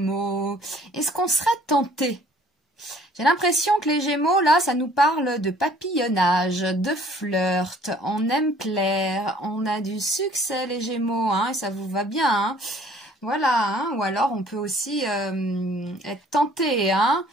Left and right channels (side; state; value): both; normal; correlation 0.56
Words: est-ce qu'on serait tenté? J'ai l'impression que les Gémeaux, là, ça nous parle de papillonnage, de flirt, on aime plaire, on a du succès, les Gémeaux, hein, et ça vous va bien, hein. Voilà, hein, ou alors on peut aussi être tenté, hein.